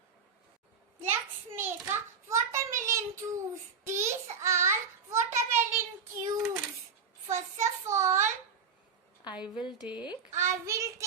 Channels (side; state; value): left; quieter; 5.9 dB